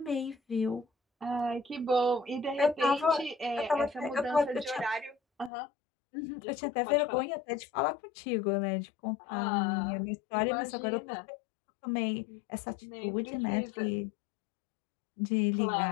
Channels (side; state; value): right; drops out; at 5.5 s